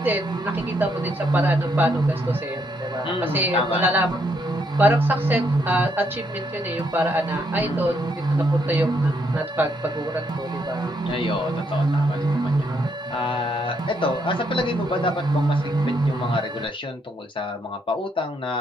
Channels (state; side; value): normal; both; correlation 0.74